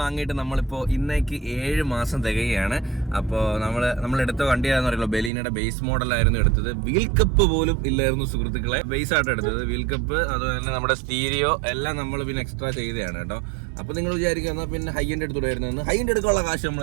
നമ്മളിപ്പോൾ ഇന്നേക്ക് 7 മാസം തികയാണ്. അപ്പോൾ നമ്മൾ എടുത്ത വണ്ടിയാണെന്ന് അറിയില്ല, ബെലീനയുടെ ബേസ് മോഡലായിരുന്നു എടുത്തത്. വീൽ കപ്പ് പോലും ഇല്ലായിരുന്നു സുഹൃത്തുക്കളെ, ബേസ് ആയിട്ട് എടുത്തത്. വീൽ കപ്പ് അതുപോലെ തന്നെ നമ്മുടെ സ്റ്റീരിയോ എല്ലാം നമ്മൾ പിന്നെ എക്സ്ട്രാ ചെയ്തതാണ് കേട്ടോ. അപ്പോൾ നിങ്ങൾ വിചാരിക്കുക എന്നാൽ പിന്നെ ഹൈ എൻഡ് എടുത്തുകൂടായിരുന്നു. ഹൈ എൻഡ് എടുക്കാനുള്ള കാശ്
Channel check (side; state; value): left; drops out; at 5.3 s